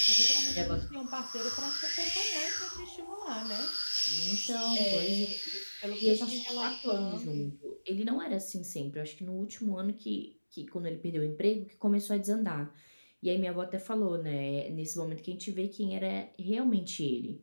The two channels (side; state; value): both; inverted; correlation -1.00